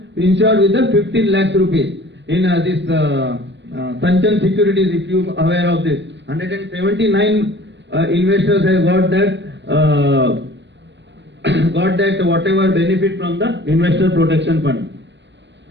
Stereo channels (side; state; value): left; late; 0.52 ms